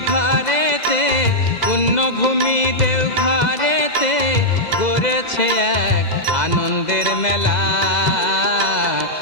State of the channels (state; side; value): late; right; 2.0 ms